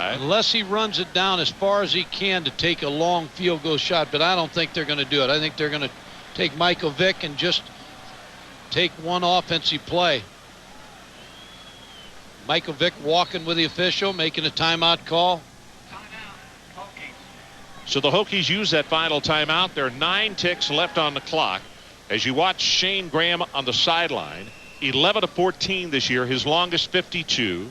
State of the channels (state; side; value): identical; both; correlation 1.00